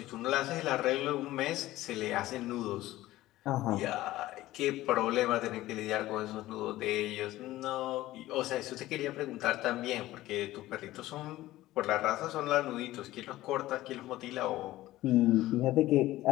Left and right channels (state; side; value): quieter; right; 16.1 dB